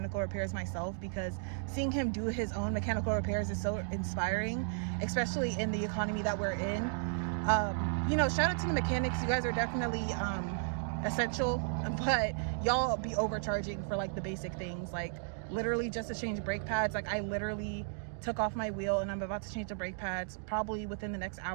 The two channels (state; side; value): silent; left; digital silence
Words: repairs myself, because seeing him do his own mechanical repairs is so inspiring, especially in the economy that we're in. You know, shout out to the mechanics. You guys are definitely essential, but y'all be overcharging for like the basic things, like literally just to change brake pads. Like I literally took off my wheel and I'm about to change the brake pads. Probably within the next